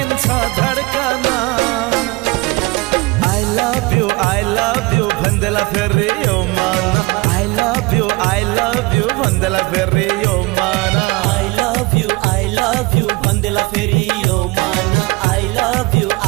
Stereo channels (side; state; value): left; quieter; 24.2 dB